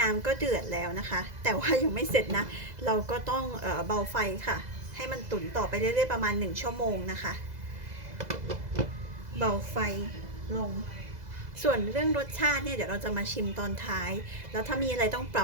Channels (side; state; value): left; late; 2.0 ms